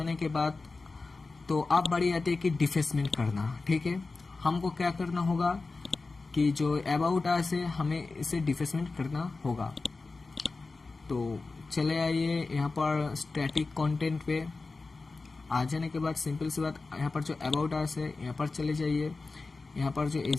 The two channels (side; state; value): right; quieter; 3.8 dB